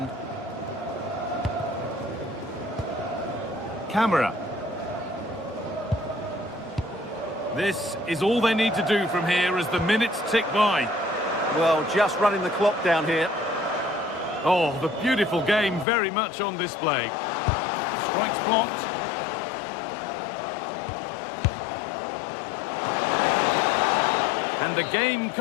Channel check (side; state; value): right; drops out; at 15.9 s